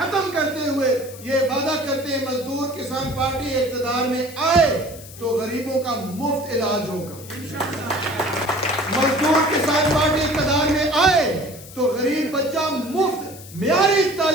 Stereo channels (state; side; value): noise; left; hiss, 17 dB below the sound